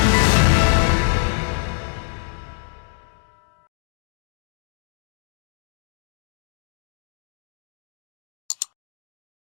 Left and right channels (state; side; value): silent; right; digital silence